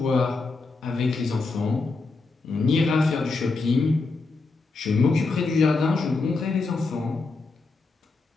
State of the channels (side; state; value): right; quieter; 3.8 dB